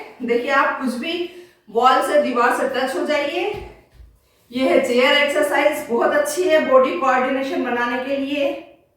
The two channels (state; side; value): identical; both; correlation 1.00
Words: देखिए, आप कुछ भी वॉल से, दीवार से टच हो जाइए। ये है चेयर एक्सरसाइज, बहुत अच्छी है बॉडी कोऑर्डिनेशन बनाने के लिए।